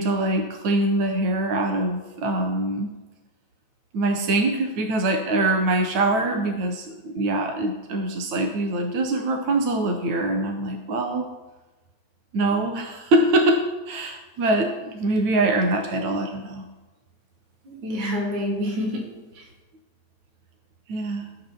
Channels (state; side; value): late; left; 9.1 ms